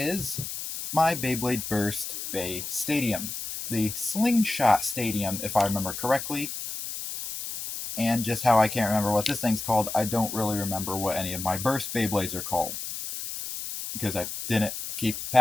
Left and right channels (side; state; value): left; noise; hiss, 6 dB below the sound